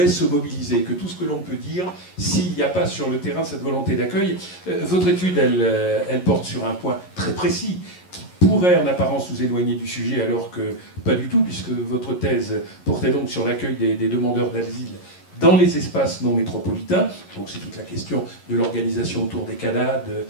se mobiliser, que tout ce que l'on peut dire, s'il n'y a pas sur le terrain cette volonté d'accueil. Votre étude, elle porte sur un point très précis, pourrait en apparence nous éloigner du sujet, alors que pas du tout, puisque votre thèse portait donc sur l'accueil des demandeurs d'asile dans les espaces non métropolitains. Donc c'est toute la question de l'organisation autour des CADA,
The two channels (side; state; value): right; late; 11 ms